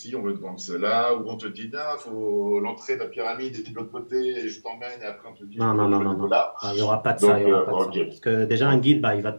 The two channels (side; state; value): both; inverted; correlation -1.00